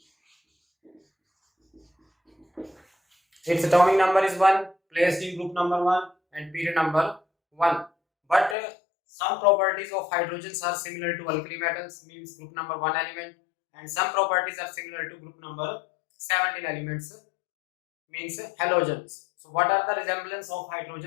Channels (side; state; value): right; drops out; at 8.6 s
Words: Its atomic number is 1, placed in group number 1 and period number 1. But some properties of hydrogens are similar to alkali metals, means group number 1 element, and some properties are similar to group number 17 elements, means halogens. So what are the resemblance of